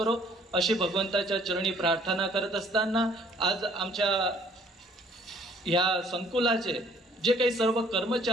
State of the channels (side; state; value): both; normal; correlation 0.59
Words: अशी भगवंताच्या चरणी प्रार्थना करत असताना आज आमच्या या संकुलाचे जे काही सर्व